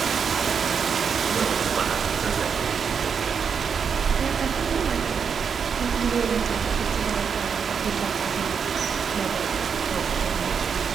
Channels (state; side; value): quieter; left; 6.5 dB